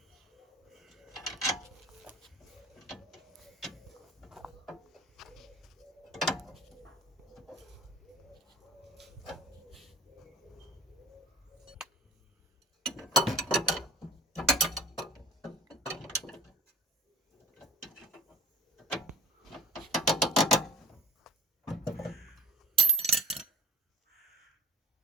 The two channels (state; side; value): normal; both; correlation 0.42